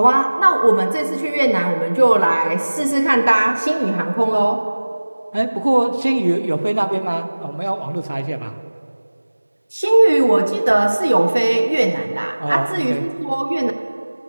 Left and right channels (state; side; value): inverted; both; correlation -1.00